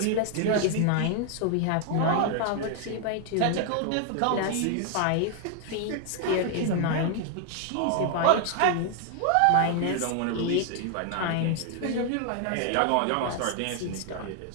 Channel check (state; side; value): different; both; correlation 0.00